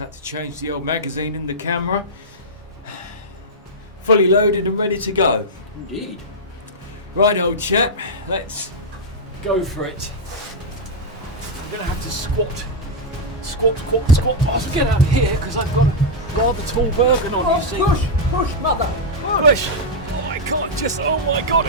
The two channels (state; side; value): normal; both; correlation -0.05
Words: to change the old magazine in the camera. Fully loaded and ready to go. Indeed. Right, old chap, let's go for it. I'm going to have to squat. I'll get out of here because I've got a rather tall Bergen on, you see. Push, mother! Push! Oh, I can't just, oh my god,